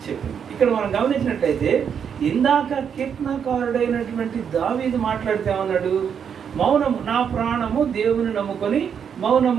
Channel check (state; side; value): quieter; left; 7.5 dB